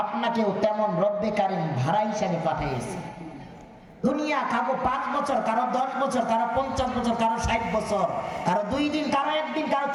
আপনাকেও তেমন রব্বে কারিম ভাড়া হিসাবে পাঠিয়েছে। দুনিয়া কারো 5 বছর, কারো 10 বছর, কারো 50 বছর, কারো 60 বছর, কারো 2 দিন, কারো 1 দিন, কারো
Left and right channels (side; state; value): both; identical; correlation 1.00